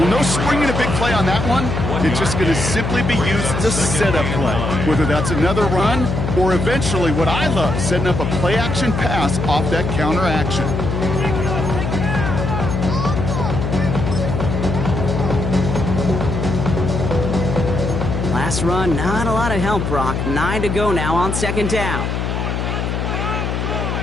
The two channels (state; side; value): noise; left; hum, 2 dB below the sound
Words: no springing a big play on that one. It's just going to simply be used as a setup play. Whether that's another run or eventually what I love, setting up a play-action pass off that counter action. Last run, not a lot of help, Brock. 9 to go now on 2nd down.